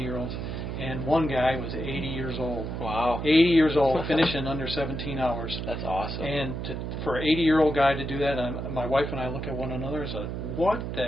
and one guy was 80 years old. Wow. 80 years old, finishing under 17 hours. That's awesome. And for an 80-year-old guy to do that, my wife and I look at one another and say, what the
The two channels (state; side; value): noise; right; hum, 5 dB below the sound